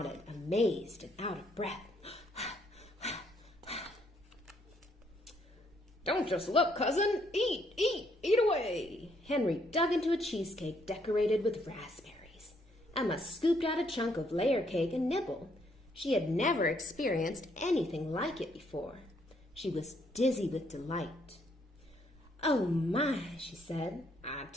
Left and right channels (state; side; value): normal; both; correlation 0.70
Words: amazed and out of breath. Don't just look, cousin. Eat away. Henry dug into a cheesecake decorated with raspberries. Emma scooped out a chunk of layer cake and nibbled. She had never experienced anything like it before. She was dizzy with delight. Oh my, she said. I